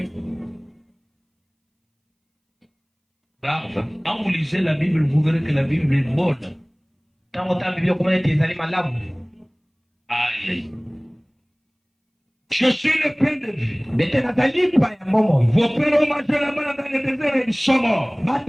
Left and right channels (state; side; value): identical; both; correlation 1.00